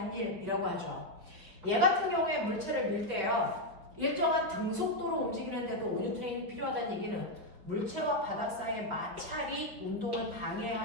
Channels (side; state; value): left; late; 5.3 ms